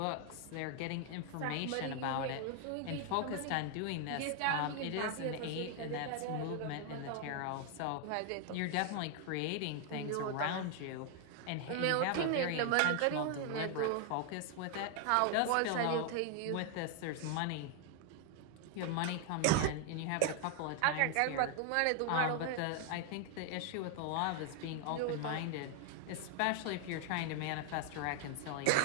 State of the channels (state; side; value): different; both; correlation 0.00